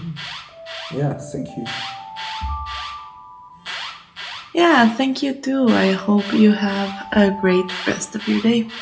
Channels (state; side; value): identical; both; correlation 1.00